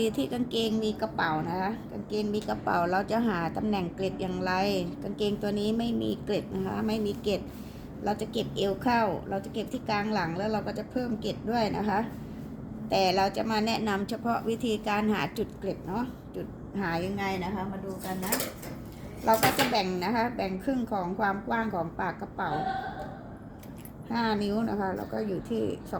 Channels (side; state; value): both; identical; correlation 1.00